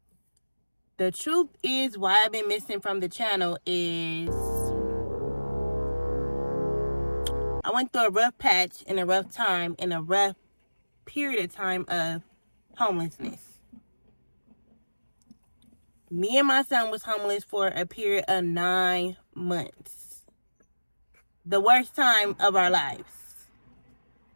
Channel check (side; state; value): both; inverted; correlation -1.00